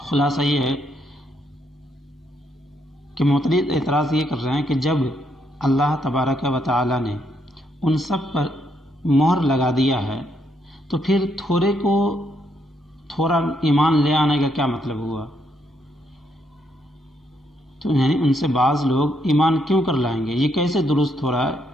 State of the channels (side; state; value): both; normal; correlation 0.75